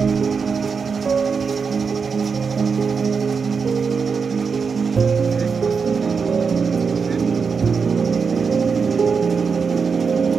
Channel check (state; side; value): quieter; left; 5.5 dB